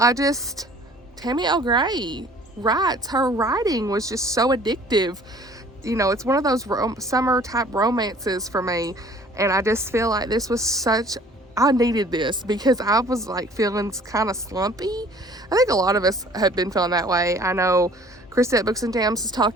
Tammy L. Gray writes. Her writing was just so addictive. You know, it's one of those summer type romances for me, and I just feel like this was I needed this because I was like feeling kind of slumpy. I think a lot of us have been feeling that way. I know Krista at Books and Jams has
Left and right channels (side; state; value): both; normal; correlation 0.52